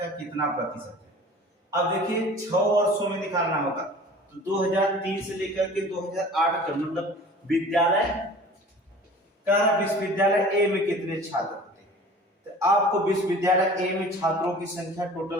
कितना प्रतिशत है। अब देखिए 6 वर्षों में निकालना होगा, तो 2003 से लेकर के 2008 का मतलब विद्यालय का, विश्वविद्यालय ए में कितने छात्र होते हैं, तो आपको विश्वविद्यालय ए में छात्रों की संख्या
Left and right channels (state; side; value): normal; both; correlation 0.44